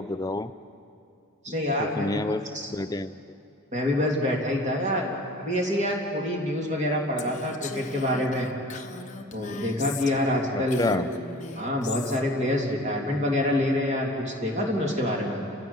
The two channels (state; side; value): normal; both; correlation 0.44